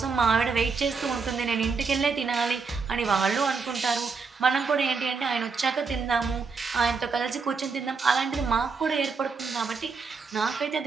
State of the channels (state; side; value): quieter; left; 4.9 dB